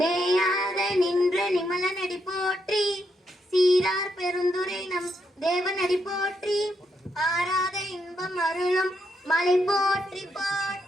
நேயாக நின்ற நிமல நடி போற்றி, சீரார் பெருந்துரை நம் தேவனடி போற்றி, ஆராத இன்பம் அருளும் மலை போற்றி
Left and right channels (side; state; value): both; normal; correlation 0.79